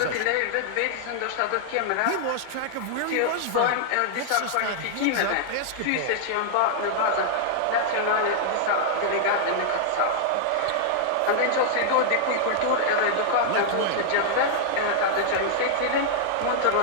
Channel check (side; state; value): both; different; correlation -0.01